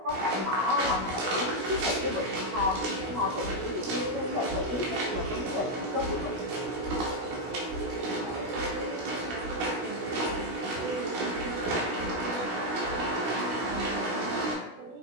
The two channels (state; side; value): late; left; 16 ms